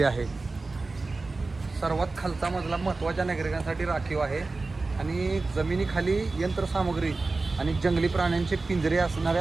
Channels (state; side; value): quieter; left; 3.6 dB